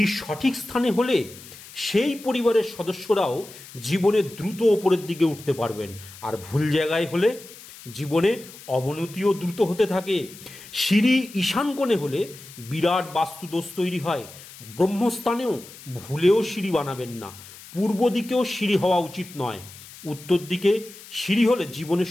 সঠিক স্থানে হলে সেই পরিবারের সদস্যরাও জীবনে দ্রুত ওপরের দিকে উঠতে পারবেন, আর ভুল জায়গায় হলে জীবনে অবনতিও দ্রুত হতে থাকে। সিঁড়ি ঈশান কোণে হলে বিরাট বাস্তুদোষ তৈরি হয়। ব্রহ্মস্থানেও ভুলেও সিঁড়ি বানাবেন না। পূর্ব দিকেও সিঁড়ি হওয়া উচিত নয়। উত্তর দিকে সিঁড়ি হলে জীবনে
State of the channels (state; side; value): noise; left; hiss, 18 dB below the sound